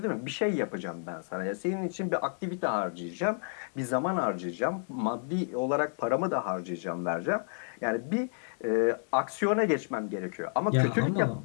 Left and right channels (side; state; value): right; silent; digital silence